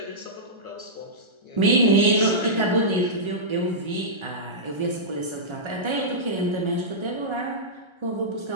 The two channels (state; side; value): late; left; 1.3 ms